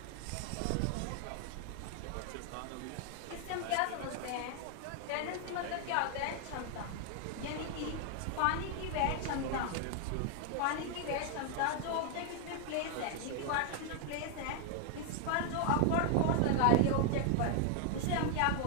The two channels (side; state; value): both; different; correlation 0.00